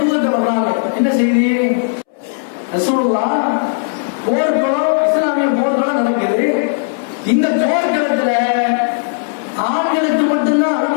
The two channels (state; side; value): silent; right; 69 dB below the other